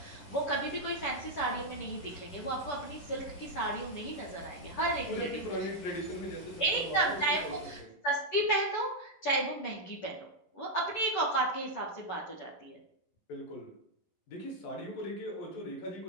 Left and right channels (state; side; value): late; right; 10 ms